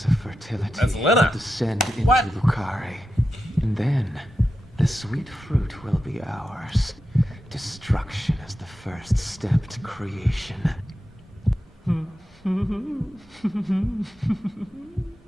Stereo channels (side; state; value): both; normal; correlation 0.89